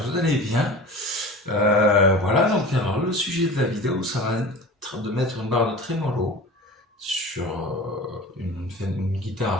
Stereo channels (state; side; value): normal; both; correlation 0.37